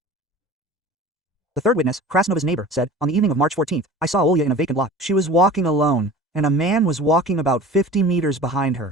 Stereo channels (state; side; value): normal; both; correlation 0.40